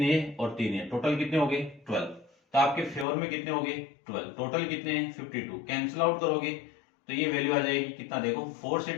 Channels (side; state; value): right; drops out; at 3.1 s